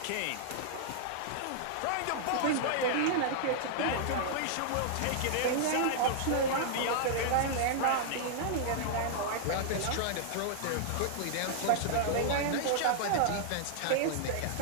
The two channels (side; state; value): both; different; correlation -0.01